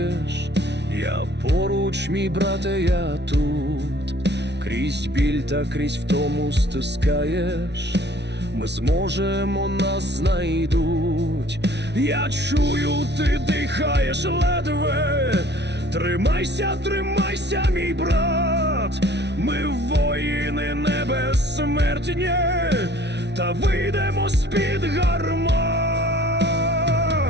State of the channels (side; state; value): left; late; 0.50 ms